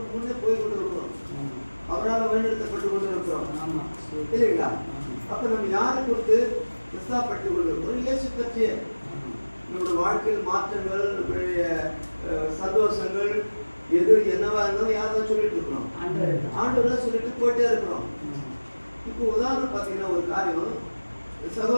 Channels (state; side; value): inverted; both; correlation -1.00